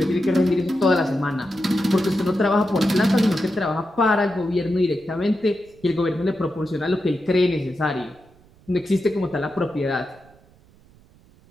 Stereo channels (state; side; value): noise; right; rumble, 28 dB below the sound